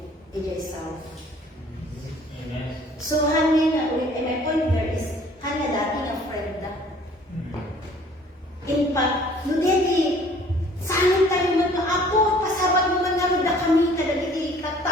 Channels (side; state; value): both; normal; correlation 0.54